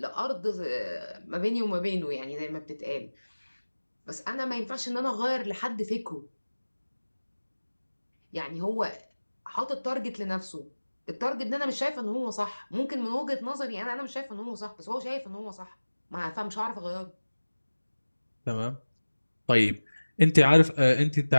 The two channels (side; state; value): both; inverted; correlation -1.00